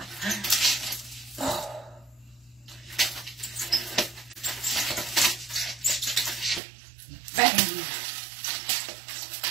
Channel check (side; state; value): left; drops out; at 6.6 s